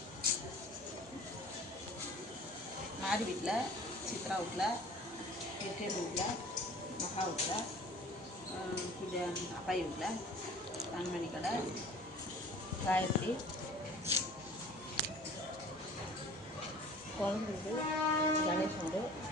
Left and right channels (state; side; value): normal; both; correlation 0.46